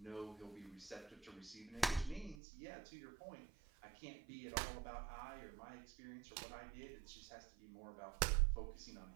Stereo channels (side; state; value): left; drops out; at 2.4 s